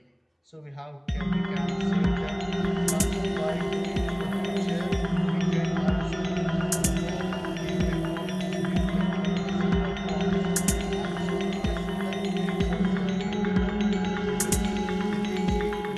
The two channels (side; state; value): both; identical; correlation 1.00